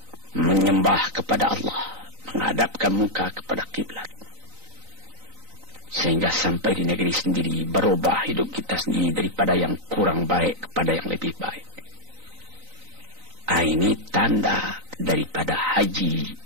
Menyembah kepada Allah, menghadapkan muka kepada kiblat. Sehingga sampai di negeri sendiri berubah hidup kita sendiri daripada yang kurang baik kepada yang lebih baik. Ini tanda daripada haji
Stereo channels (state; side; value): late; left; 3.9 ms